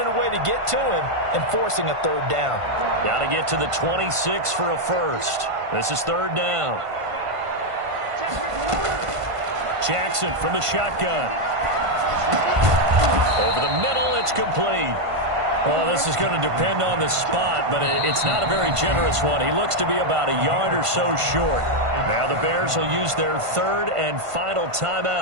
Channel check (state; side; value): late; left; 1.5 ms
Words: a way to get to him and forcing a 3rd down. Got to get to the 26 for a first. This is 3rd down. Jackson from the shotgun. Over the middle, it's complete. Well, this is going to depend on the spot, but it's not a very generous one. He looks to be about a yard or so short. Now the Bears will use their 3rd and final